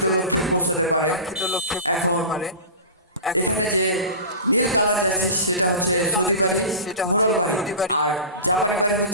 লক্ষ্যে পৌঁছাতে পারে। এখন এখানে যে নীল কালার জার্সি সেটা হচ্ছে সৌদি বাড়ি মোরল বাড়ি, আর জাপানি বাড়ি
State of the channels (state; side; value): inverted; both; correlation -0.31